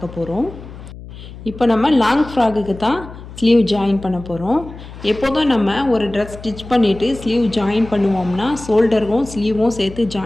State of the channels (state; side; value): noise; left; hum, 15 dB below the sound